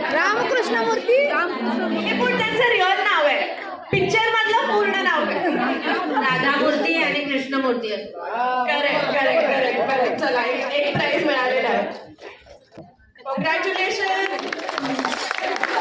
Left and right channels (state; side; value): identical; both; correlation 1.00